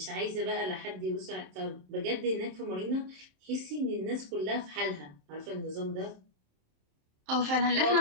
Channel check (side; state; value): left; late; 27 ms